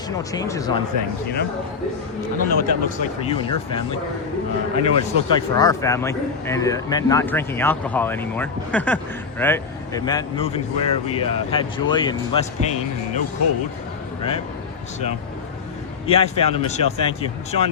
changes on things, you know? I don't know what that looks like for you and your family. I know what it's looked like for our family, and it meant not drinking alcohol anymore, right? It meant moving to where we had joy and less pain and no cold, right? So, yeah, I found him, Michelle. Thank you.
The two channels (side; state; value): right; quieter; 5.4 dB